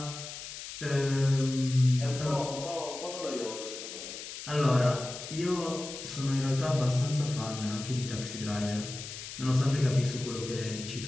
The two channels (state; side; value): noise; left; hiss, 10 dB below the sound